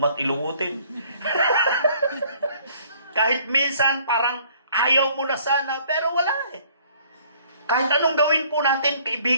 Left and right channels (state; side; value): inverted; both; correlation -0.58